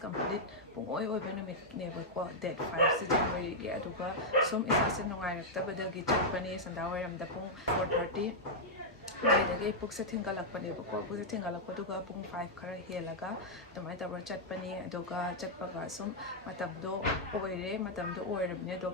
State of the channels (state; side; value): normal; both; correlation -0.05